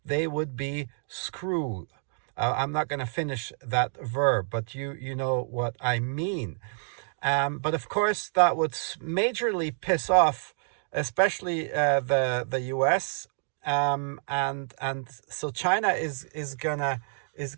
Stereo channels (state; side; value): silent; left; digital silence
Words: they would be screwed. I'm not going to finish that verb, but you know what I mean. But of course, that would majorly piss off, especially the US, and so China is